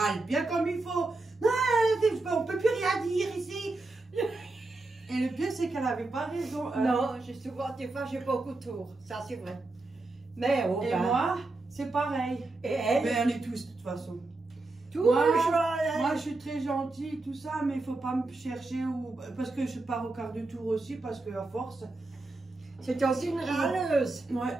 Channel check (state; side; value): quieter; left; 3.2 dB